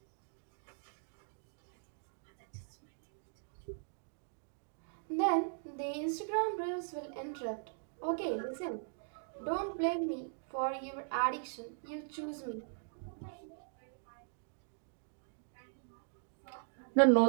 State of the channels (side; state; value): left; silent; digital silence